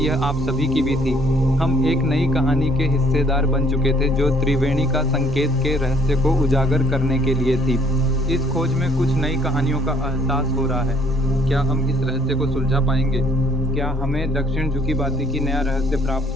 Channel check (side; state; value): both; normal; correlation 0.62